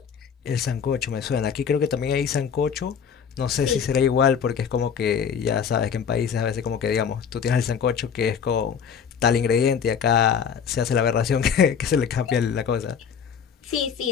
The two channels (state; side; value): quieter; right; 7.2 dB